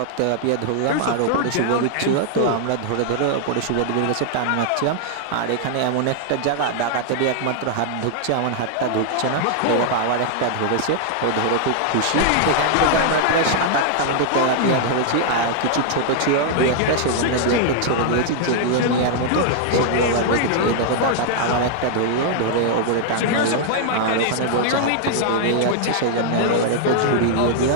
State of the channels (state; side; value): different; both; correlation -0.01